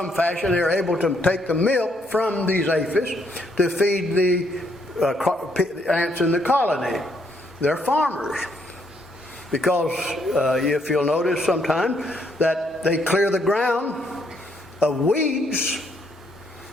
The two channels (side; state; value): both; normal; correlation 0.72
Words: fashion they're able to take the milk from these aphis to feed the ants in the colony. They're farmers. Because if you'll notice sometime that they clear the ground of weeds,